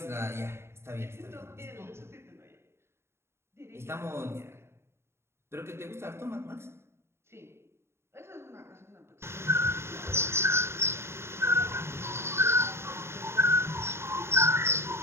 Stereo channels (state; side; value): late; left; 0.12 ms